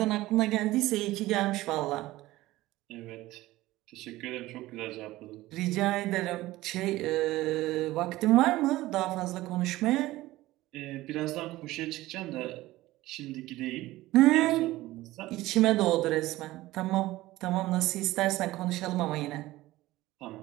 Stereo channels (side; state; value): left; quieter; 17.4 dB